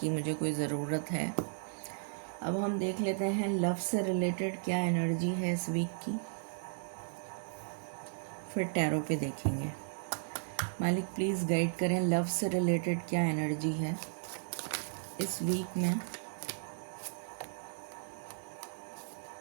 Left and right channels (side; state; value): left; silent; digital silence